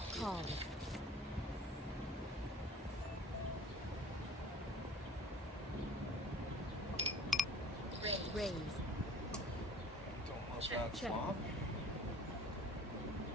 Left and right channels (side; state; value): both; normal; correlation 0.48